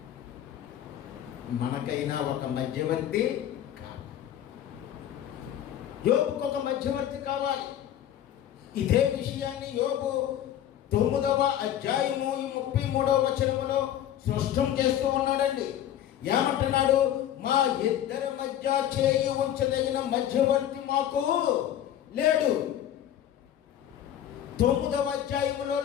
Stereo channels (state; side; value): quieter; right; 11.1 dB